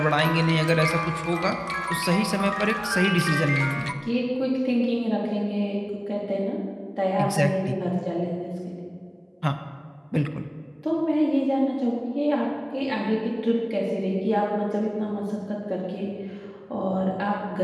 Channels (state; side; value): identical; both; correlation 1.00